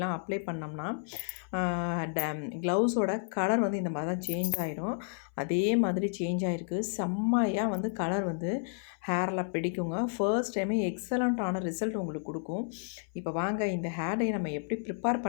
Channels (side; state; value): right; silent; 57 dB below the other